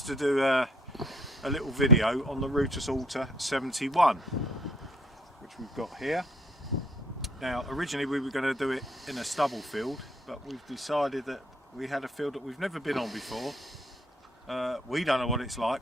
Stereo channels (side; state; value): both; normal; correlation 0.60